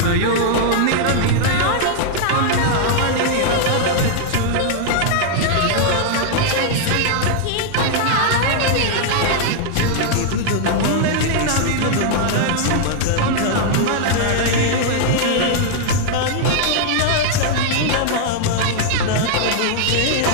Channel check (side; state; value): both; different; correlation -0.01